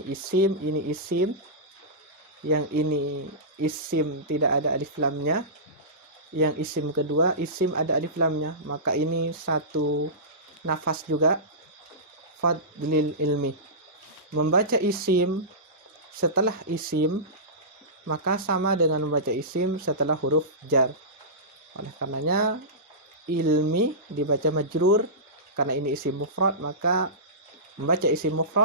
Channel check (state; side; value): normal; both; correlation -0.19